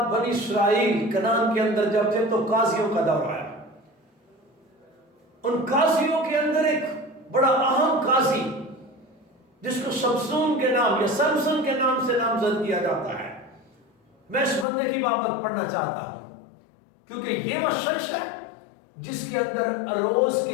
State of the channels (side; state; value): right; drops out; at 14.7 s